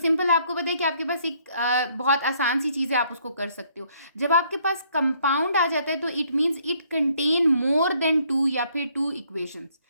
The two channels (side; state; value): both; inverted; correlation -0.66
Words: आपको पता है कि आपके पास एक बहुत आसान सी चीज़ है, आप उसको कर सकते हो. जब आपके पास कंपाउंड आ जाता है तो it means it contain more than two या फिर टू इक्वेशंस.